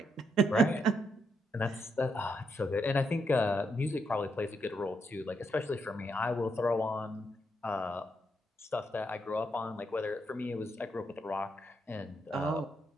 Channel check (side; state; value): both; normal; correlation 0.79